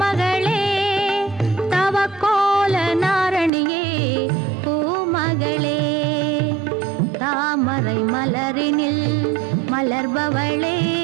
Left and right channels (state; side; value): drops out; left; at 3.5 s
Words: தவக்கோல நாரணியே பூமகளே. தாமரை மலரினில் மலர்பவளே